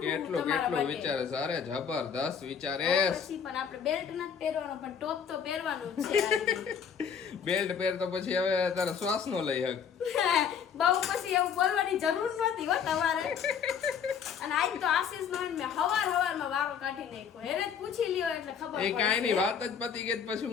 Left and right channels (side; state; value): right; quieter; 7.3 dB